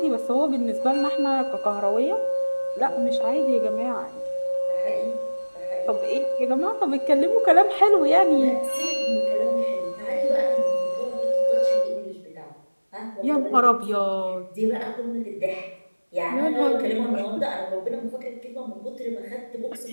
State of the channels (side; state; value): both; inverted; correlation -1.00